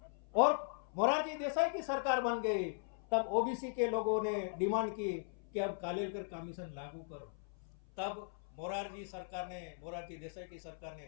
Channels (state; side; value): silent; right; 52 dB below the other